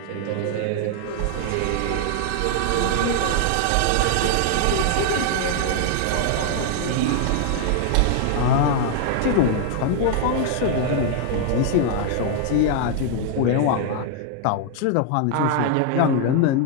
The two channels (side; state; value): both; different; correlation 0.00